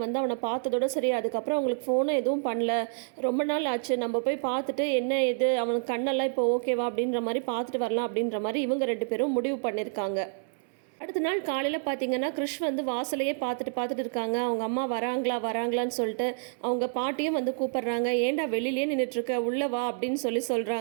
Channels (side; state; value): left; silent; 59 dB below the other